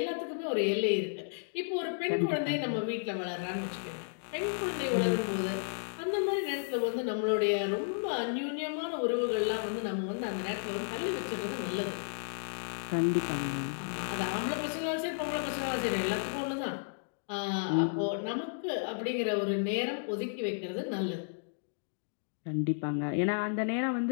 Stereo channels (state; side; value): silent; right; digital silence